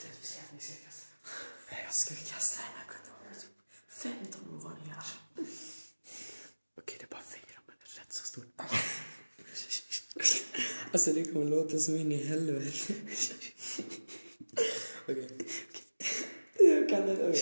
Jag ska kasta den här kondomen. 15 våningar. Okej, det är bara 4, men det är rätt så stort. Alltså det kommer låta som in i helvete. Okej. Jag kan inte.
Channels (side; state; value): both; inverted; correlation -1.00